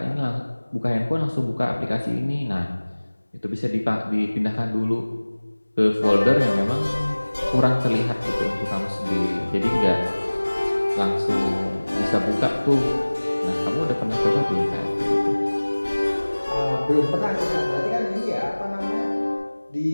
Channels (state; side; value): inverted; both; correlation -1.00